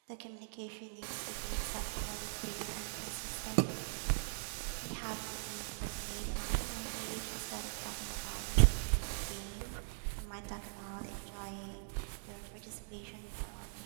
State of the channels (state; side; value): silent; left; digital silence